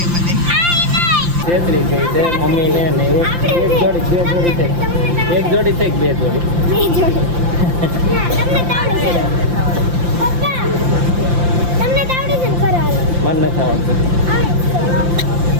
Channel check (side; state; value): left; late; 5.8 ms